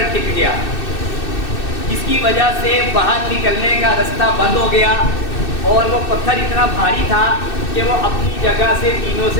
ٹک گیا، جس کی وجہ سے باہر نکلنے کا رستہ بند ہو گیا، اور وہ پتھر اتنا بھاری تھا کہ وہ اپنی جگہ سے تینوں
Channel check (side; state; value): right; late; 2.6 ms